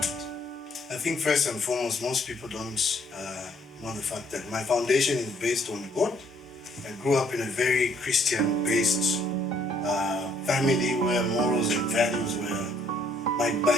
did? I think first and foremost, most people don't know the fact that my foundation is based on God. I grew up in a very Christian-based family where morals and values were. My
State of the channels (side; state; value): both; normal; correlation 0.65